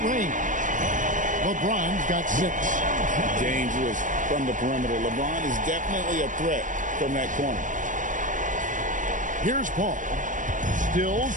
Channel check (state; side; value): late; left; 0.37 ms